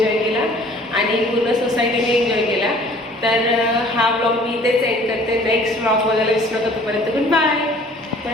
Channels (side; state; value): both; normal; correlation 0.52